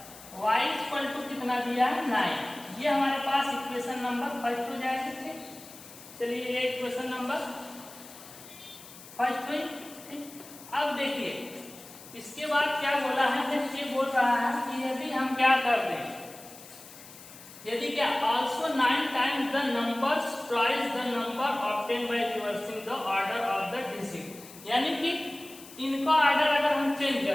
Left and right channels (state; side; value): noise; left; hiss, 18 dB below the sound